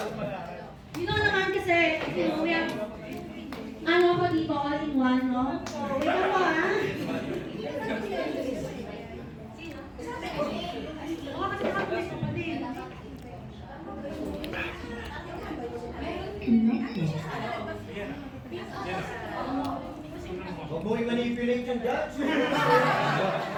You know naman kasi, you know, we have, ano ako dito, all in one, no? Wait ako, ha? Oo, kasi nakapulis ko pa din. Huwag mo i-manipulate yung judge.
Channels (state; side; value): identical; both; correlation 1.00